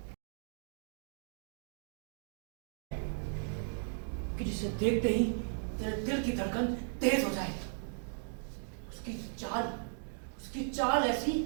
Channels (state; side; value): silent; left; digital silence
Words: कि जिसे देखते ही तेरे दिल की धड़कन तेज हो जाए। उसकी चाल ऐसी